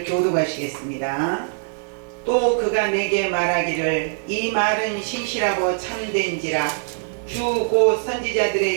교독하시겠습니다. 또 그가 내게 말하기를 이 말은 신실하고 참된지라 주 곧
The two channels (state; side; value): silent; left; digital silence